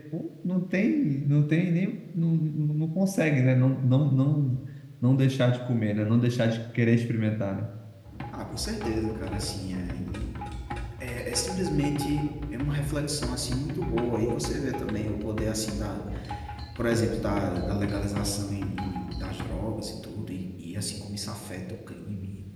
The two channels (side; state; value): both; identical; correlation 1.00